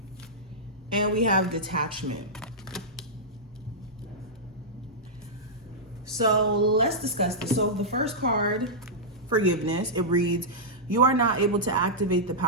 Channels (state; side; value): normal; both; correlation -0.11